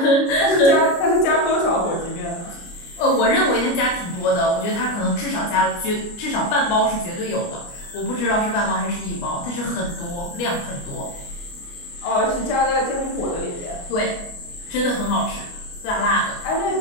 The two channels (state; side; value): late; right; 29 ms